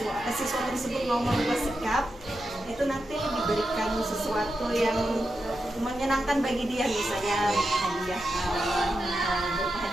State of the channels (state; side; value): noise; left; hum, 22 dB below the sound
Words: tersebut mau merubah sikap, itu nanti diberikan sesuatu yang menyenangkan bagi dia, misalnya